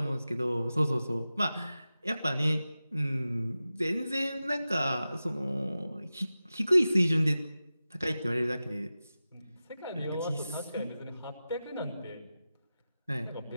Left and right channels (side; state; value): both; inverted; correlation -0.94